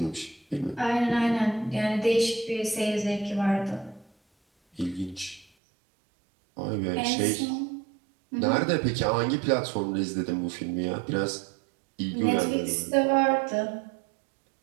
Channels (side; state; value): left; drops out; at 5.5 s